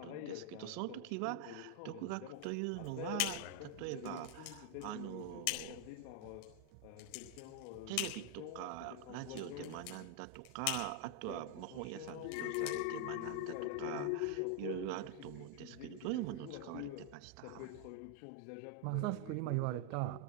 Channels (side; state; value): both; different; correlation 0.00